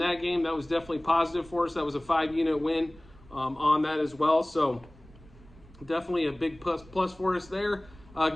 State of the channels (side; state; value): right; noise; rumble, 23 dB below the sound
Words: game, that was definitely positive for us. That was a 5-unit win on that as well. So definitely a big plus for us there.